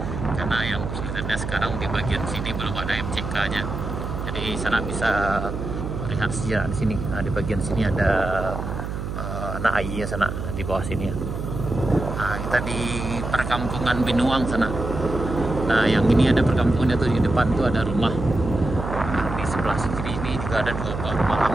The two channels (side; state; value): right; noise; hum, 5 dB below the sound